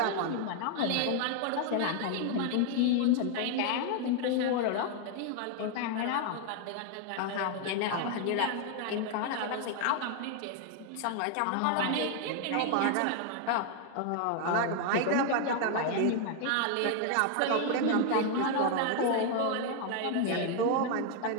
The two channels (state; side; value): different; both; correlation 0.00